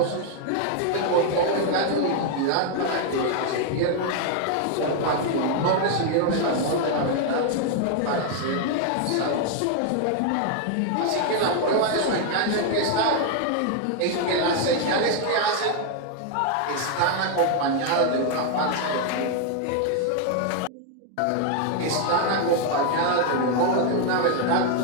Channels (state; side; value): different; both; correlation 0.00